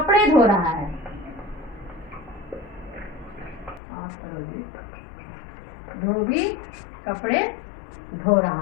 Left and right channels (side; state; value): right; drops out; at 3.8 s